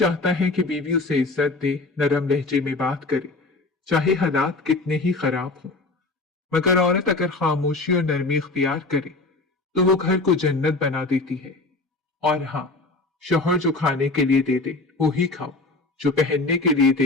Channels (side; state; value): right; quieter; 3.3 dB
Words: है कि बीवी उसे इज्जत दे, नरम लहजे में बात करे, चाहे हालात कितने ही खराब हों। मगर औरत अगर खामोशी और नरमी इख्तियार करे, तो वो घर को जन्नत बना देती है। और हाँ, शौहर जो खाने के लिए दे दे वो ही खाओ, जो पहनने के लिए